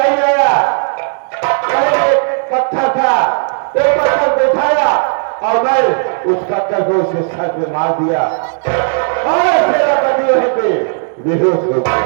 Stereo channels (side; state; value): left; silent; digital silence